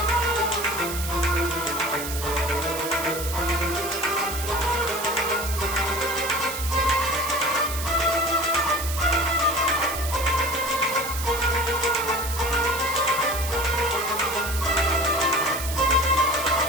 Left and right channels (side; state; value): right; noise; hiss, 7 dB below the sound